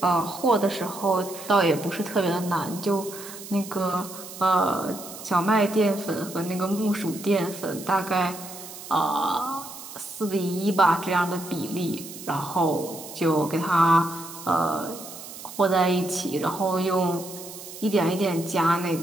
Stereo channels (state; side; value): noise; right; hiss, 13 dB below the sound